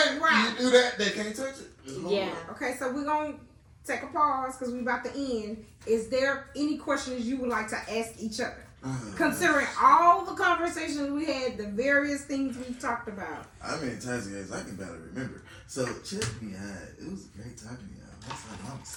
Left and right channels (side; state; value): both; identical; correlation 1.00